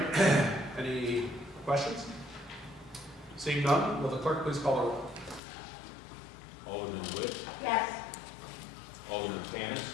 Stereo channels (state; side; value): drops out; right; at 5.4 s